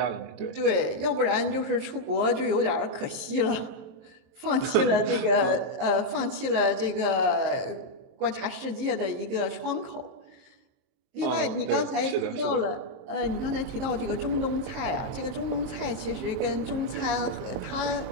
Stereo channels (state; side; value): late; left; 23 ms